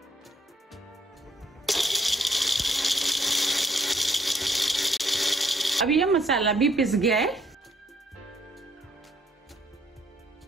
अब यह मसाला भी पिस गया है।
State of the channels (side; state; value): both; normal; correlation 0.66